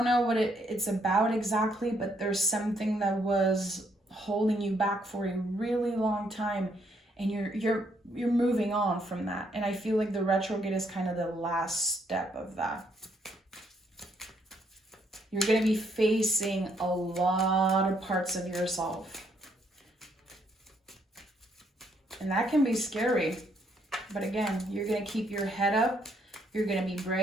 know what it's about exactly, but there's something that was holding you back for a really long time, and you're moving on from that. And I feel like the retrograde is kind of the last step of that. You're going to be facing a lot of parts of yourself. And that can be scary. But again, you're going to keep your head up. You're going to be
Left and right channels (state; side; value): normal; both; correlation 0.71